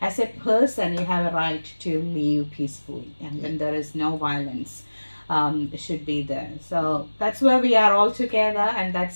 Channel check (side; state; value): both; inverted; correlation -1.00